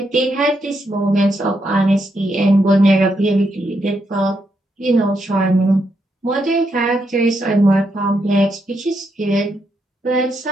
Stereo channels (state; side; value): normal; both; correlation 0.80